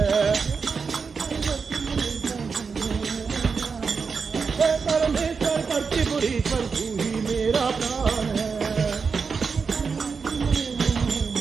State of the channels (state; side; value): quieter; left; 5.3 dB